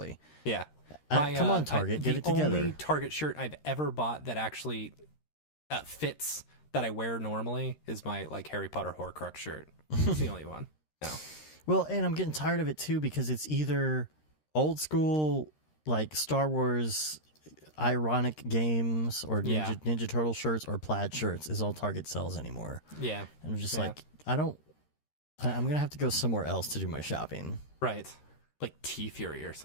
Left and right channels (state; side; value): late; right; 13 ms